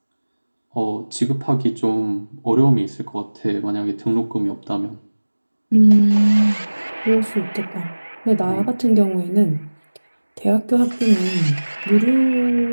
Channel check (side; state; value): both; inverted; correlation -1.00